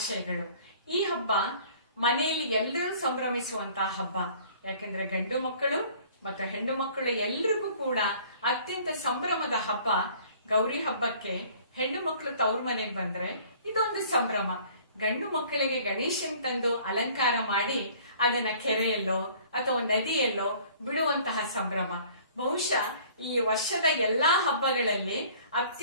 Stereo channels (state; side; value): inverted; both; correlation -0.52